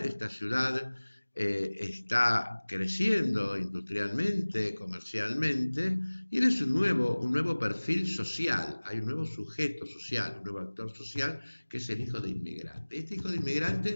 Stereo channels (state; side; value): inverted; both; correlation -1.00